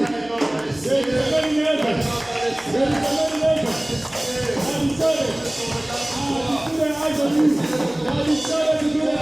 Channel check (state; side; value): noise; right; hum, 26 dB below the sound